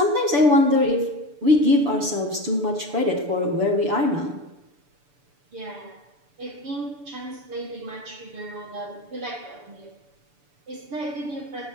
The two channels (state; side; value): late; left; 6.9 ms